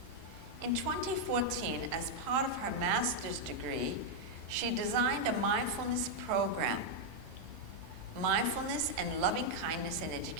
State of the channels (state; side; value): normal; both; correlation -0.01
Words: In 2014, as part of her master's degree, she designed a mindfulness program, Mindfulness and Loving Kindness in